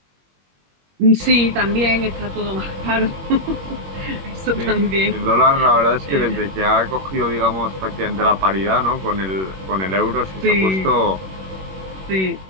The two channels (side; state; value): left; late; 21 ms